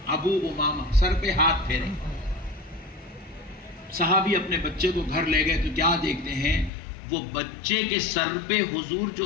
ابو امامہ، سر پہ ہاتھ پھیرے. صحابی اپنے بچے کو گھر لے گئے تو کیا دیکھتے ہیں، وہ بچے کے سر پہ حضور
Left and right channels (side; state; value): right; drops out; at 6.7 s